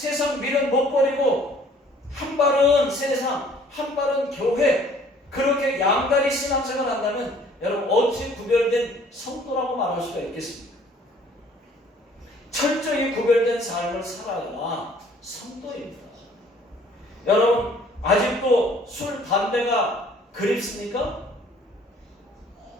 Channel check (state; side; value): normal; both; correlation 0.57